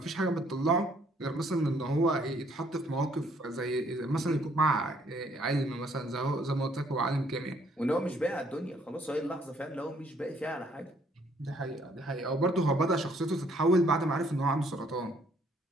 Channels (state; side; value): normal; both; correlation 0.65